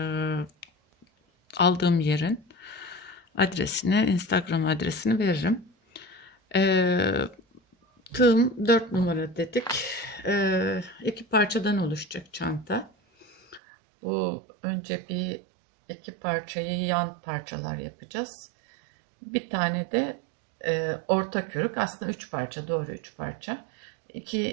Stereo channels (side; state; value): left; drops out; at 13.6 s